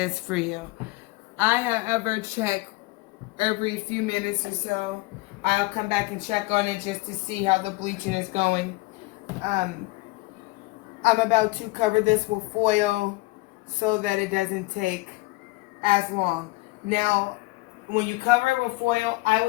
for you. I however check every few minutes or so. I'll come back and check on it just to see how the bleaching is going. I'm about to cover this with foil so that it doesn't take as long. Now, when you cover it with foil, I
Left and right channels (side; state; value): right; quieter; 22.9 dB